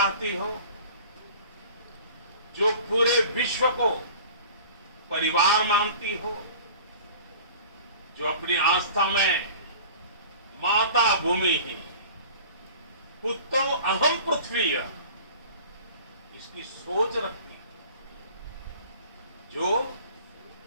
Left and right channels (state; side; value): inverted; both; correlation -0.43